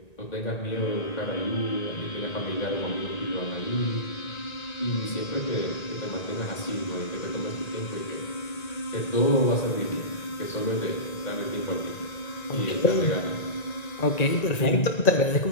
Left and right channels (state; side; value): late; right; 1.9 ms